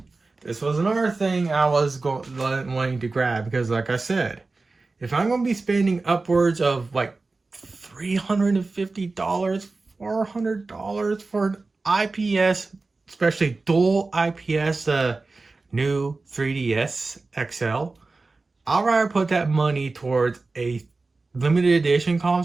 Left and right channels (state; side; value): quieter; left; 3.6 dB